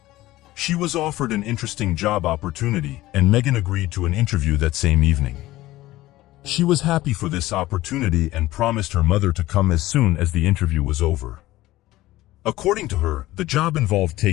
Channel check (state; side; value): quieter; right; 16.9 dB